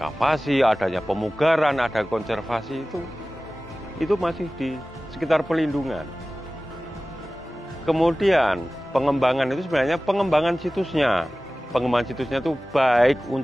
adanya pemugaran, ada konservasi, itu masih di sekitar pelindungan. Kemudian pengembangan itu sebenarnya pengembangan situsnya. Pengembangan situsnya itu baik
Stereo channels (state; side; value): normal; both; correlation 0.97